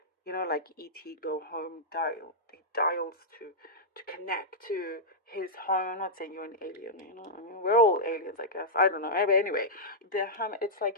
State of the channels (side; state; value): both; normal; correlation -0.09